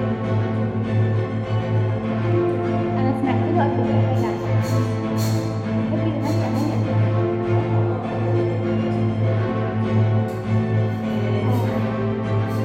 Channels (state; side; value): noise; left; hum, 28 dB below the sound